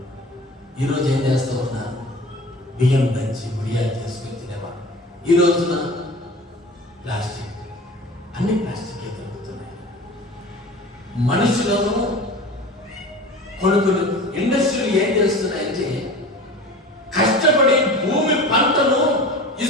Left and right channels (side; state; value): both; normal; correlation 0.38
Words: ఈరోజు ఏం చేస్తూ ఉన్నారు? బియ్యం దంచి వడియాలు చేసుకొని తినేవాళ్ళు. ఈ రోజున ప్లాస్టిక్, అన్ని ప్లాస్టికే దొరుకుతున్నాయి. మనుషులను కొన్ని ఇండస్ట్రీలు ఏం చేస్తున్నాయంటే, కష్టపడి భూమి పంటను